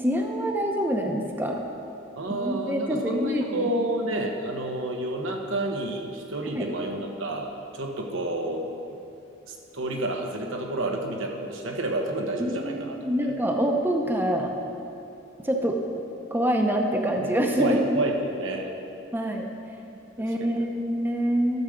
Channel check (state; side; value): normal; both; correlation 0.49